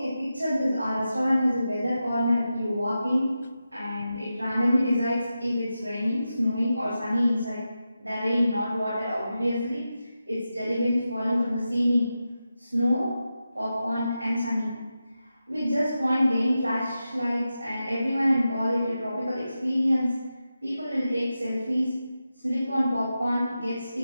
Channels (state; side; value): inverted; both; correlation -0.91